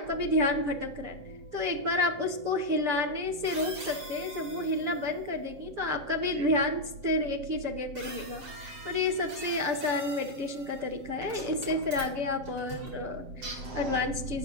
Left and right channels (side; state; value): left; late; 7.5 ms